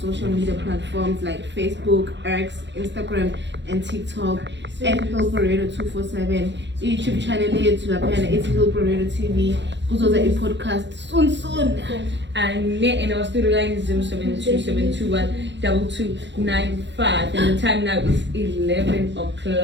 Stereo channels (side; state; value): left; late; 0.52 ms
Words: social media platforms like Facebook, X, Instagram, and TikTok at Hillbrow 247. YouTube channel here to appear it's Hillbrow TV. Go to the podcast soon. And in our studio line is 072-721-2295, and the time now is 11